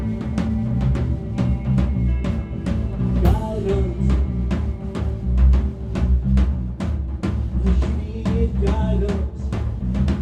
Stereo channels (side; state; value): both; identical; correlation 1.00